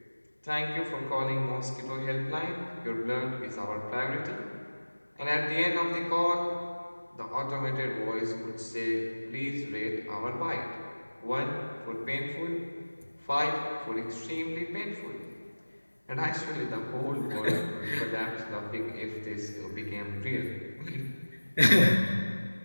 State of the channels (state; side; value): inverted; both; correlation -1.00